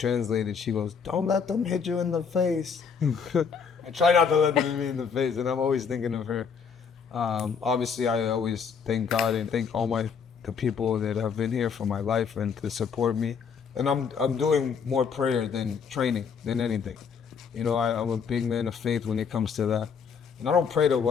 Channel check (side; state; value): right; quieter; 6.3 dB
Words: she goes, "Don't let them hit you in the face." I try not to let them hit me in the face, and I'm always thinking of her. Obviously, I always thank God and thank all the people that have been here for my life and to support me. And I'm doing more prayer than training than anything. You know, I'm a big man of faith when it comes to that. And I don't pray to